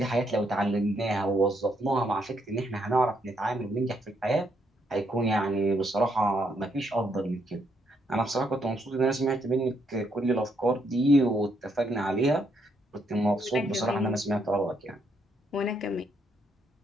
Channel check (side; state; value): both; normal; correlation 0.74